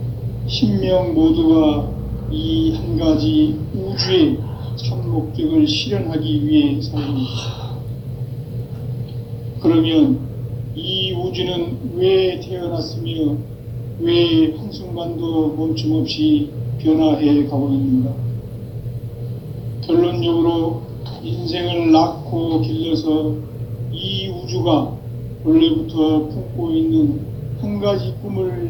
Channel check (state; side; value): identical; both; correlation 1.00